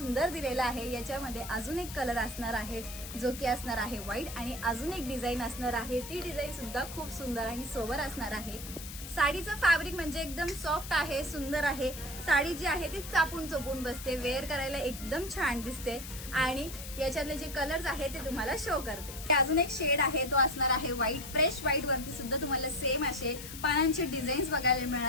दिलेला आहे। याच्यामध्ये अजून एक कलर असणार आहे जो की असणार आहे व्हाईट, आणि अजून एक डिझाईन असणार आहे, ती डिझाईन सुद्धा खूप सुंदर आणि सोबर असणार आहे। साडीचं फॅब्रिक म्हणजे एकदम सॉफ्ट आहे, सुंदर आहे। साडी जी आहे ती चापून चोपून बसते, वेअर करायला एकदम छान दिसते। आणि याच्यातले जे कलर्स आहे ते तुम्हाला शो करते। अजून एक शेड आहे तो असणार आहे व्हाईट, फ्रेश व्हाईट वरती सुद्धा तुम्हाला सेम असे पानांचे डिझाईन्स बघायला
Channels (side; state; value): left; noise; hiss, 11 dB below the sound